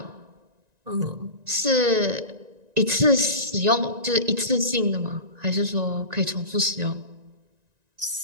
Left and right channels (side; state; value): left; late; 1.9 ms